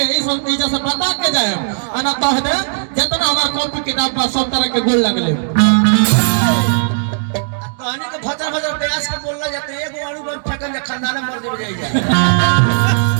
जैसे बता के जाए अना कह दे जितना हमारा कॉपी किताब का सब तरह के गोल लगले कहानी के भचर भचर प्रयास के बोलला जाते एगो अणु बम फेंकन जा खानदान मर जे जाई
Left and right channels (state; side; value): silent; left; digital silence